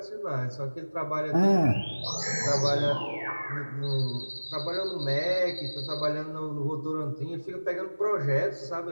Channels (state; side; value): inverted; both; correlation -1.00